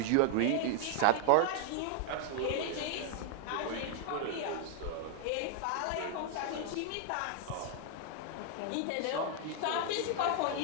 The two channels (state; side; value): different; both; correlation 0.00